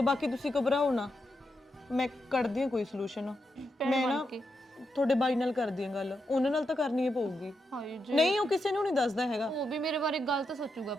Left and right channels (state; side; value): normal; both; correlation 0.84